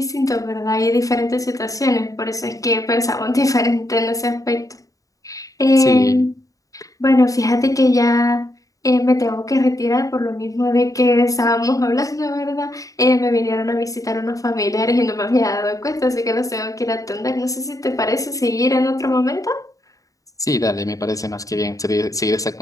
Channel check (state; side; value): late; right; 0.16 ms